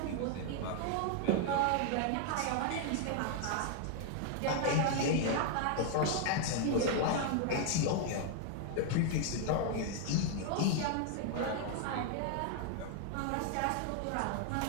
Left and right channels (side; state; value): both; different; correlation 0.00